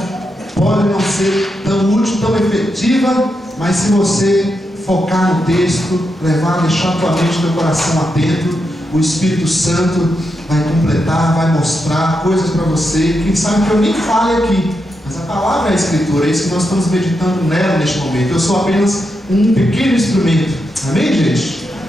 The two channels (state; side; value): normal; both; correlation 0.85